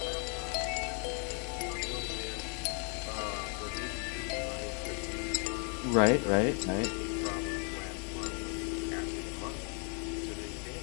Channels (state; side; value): quieter; right; 39.2 dB